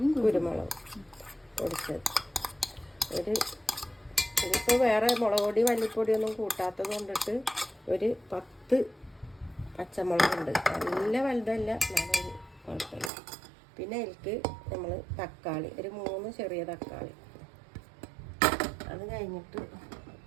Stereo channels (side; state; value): left; drops out; at 13.1 s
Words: കുരുമുളക് പൊടിച്ചത്. ഇതിപ്പോൾ വേറെ മുളക് പൊടി മല്ലിപ്പൊടിയൊന്നും കൂട്ടാത്തത് കൊണ്ടിട്ട് ഒരു 10 പച്ചമുളകുണ്ട്. നല്ല വലുതല്ല, നല്ലൊരു കുഴപ്പമില്ല. പിന്നെ അതിലേക്ക് നമ്മൾ തക്കാളി, ഒരു 3 ചെറിയ തക്കാളി. അത് കഴിഞ്ഞിട്ട്